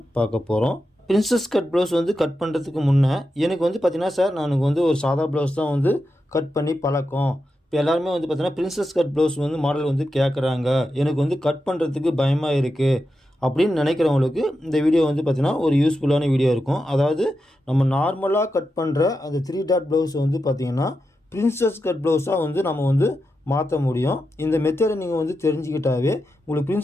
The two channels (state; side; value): normal; both; correlation 0.88